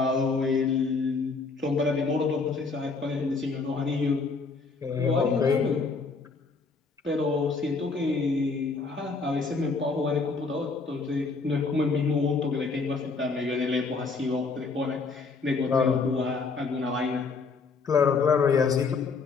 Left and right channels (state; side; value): quieter; right; 4.4 dB